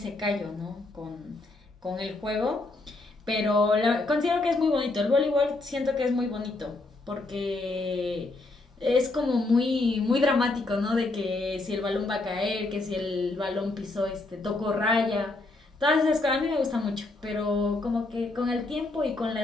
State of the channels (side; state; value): right; quieter; 3.1 dB